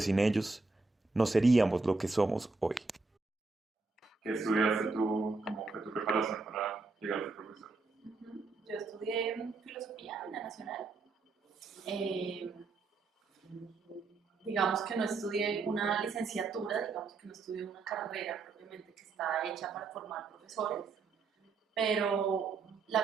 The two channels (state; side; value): quieter; left; 3.9 dB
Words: sin ellos no seríamos lo que somos hoy. ¿Qué estudiaste tú? ¿Cómo fue tu preparación para llegar a ser profesor? Yo estudié filosofía en la Nacional. Eh, digamos que no estudié una licenciatura, digamos que no estudié una carrera propiamente que está hecha para formar profesores, pero